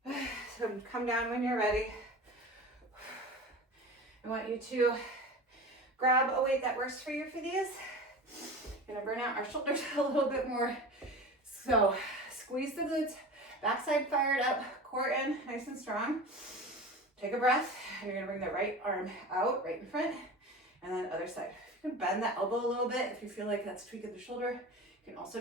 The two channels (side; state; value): both; normal; correlation 0.33